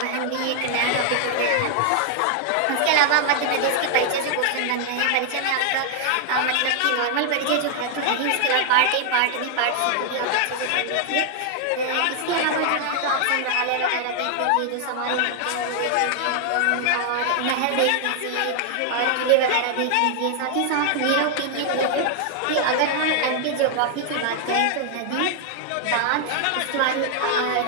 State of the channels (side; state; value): both; different; correlation 0.00